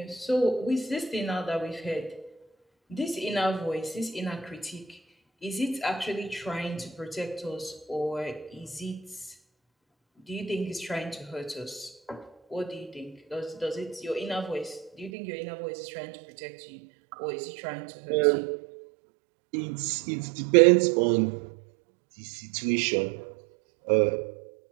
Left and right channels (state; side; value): drops out; left; at 15.1 s